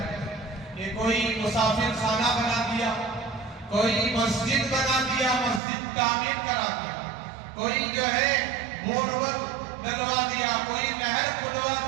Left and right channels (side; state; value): left; drops out; at 5.6 s